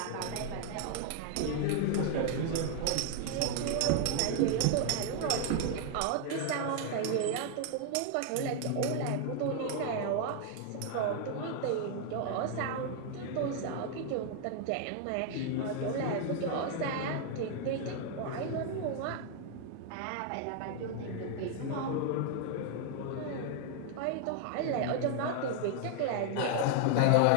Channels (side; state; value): both; different; correlation 0.00